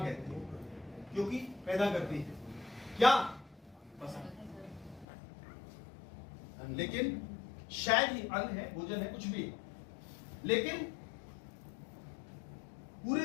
हैं, क्योंकि पैदा करती है क्या? फसल। लेकिन शायद ही अन्न है, भोजन है, कुछ भी है, लेकिन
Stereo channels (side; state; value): right; drops out; at 5.1 s